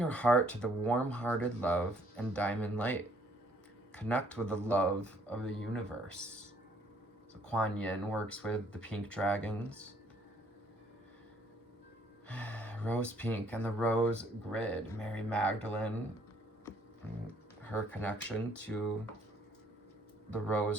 heart to the warm-hearted love and diamond light. Connect with the love of the universe. So Kuan Yin works with the pink dragons. Rose pink and the rose grid. Mary Magdalene, her connection to the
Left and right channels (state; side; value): normal; both; correlation 0.63